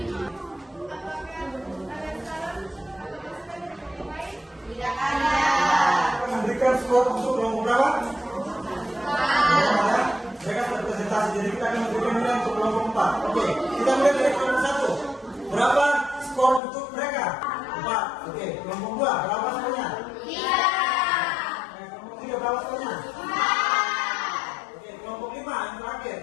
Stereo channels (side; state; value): right; drops out; at 16.6 s